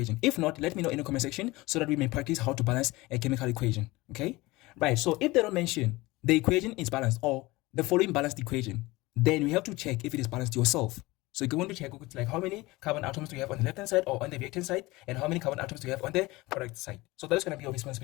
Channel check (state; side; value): quieter; right; 21.0 dB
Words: If not, let me know in the comment section so that we may practice how to balance a chemical equation. Okay? Right. So if they don't mention the equation is balanced or the following balanced equation, then we have to check if it is balanced yourself. So you're going to check like how many carbon atoms do you have on the left hand side or on the reactant side, and how many carbon atoms do you have on the product side. So that is going to be your